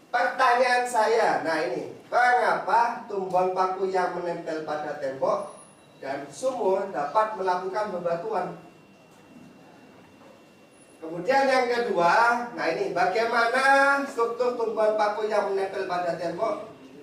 pertanyaan saya, nah ini, mengapa tumbuhan paku yang menempel pada tembok dan sumur dapat melakukan bebatuan? Kemudian yang kedua, nah ini, bagaimana struktur tumbuhan paku yang menempel pada tembok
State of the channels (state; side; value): identical; both; correlation 1.00